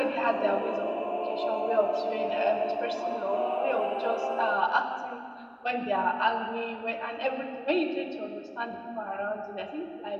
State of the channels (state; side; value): identical; both; correlation 1.00